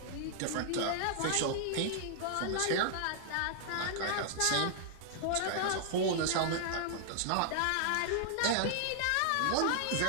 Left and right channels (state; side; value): different; both; correlation -0.01